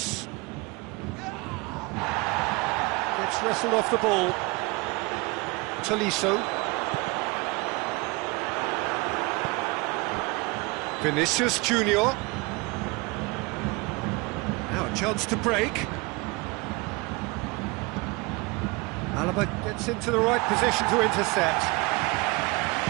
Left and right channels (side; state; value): left; quieter; 25.8 dB